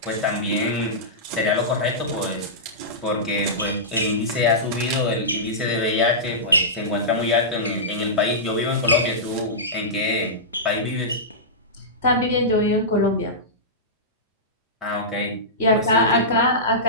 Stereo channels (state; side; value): normal; both; correlation -0.16